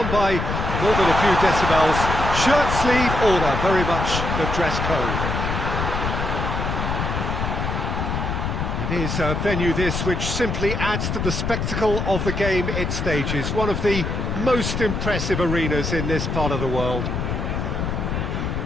by more than a few decibels. Shirt sleeve order, very much the dress code. It is a venue this which simply adds to the spectacle of the game it stages. One of the most impressive arenas in this part of the world.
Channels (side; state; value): left; noise; rumble, 2 dB below the sound